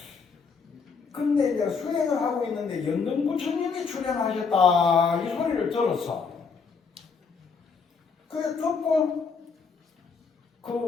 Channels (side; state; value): right; quieter; 5.2 dB